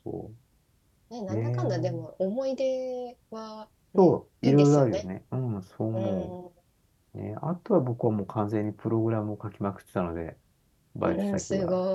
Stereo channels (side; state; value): both; identical; correlation 1.00